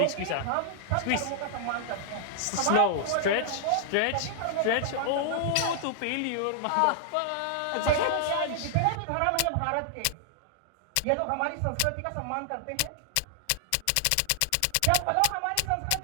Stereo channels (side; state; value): both; different; correlation 0.00